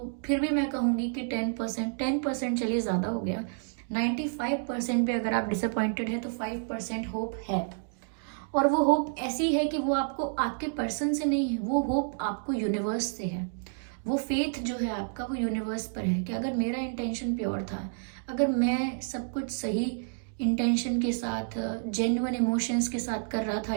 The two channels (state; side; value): silent; left; digital silence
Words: फिर भी मैं कहूँगी कि 10% चलिए ज़्यादा हो गया, 95% भी अगर आप डिसअपॉइंटेड है तो 5% होप है। और वो होप ऐसी है कि वो आपको आपके पर्सन से नहीं है, वो होप आपको यूनिवर्स से है। वो फेथ जो है आपका वो यूनिवर्स पर है कि अगर मेरा इंटेंशन प्योर था, अगर मैं सब कुछ सही इंटेंशन के साथ जेन्युइन इमोशंस के साथ कर रहा था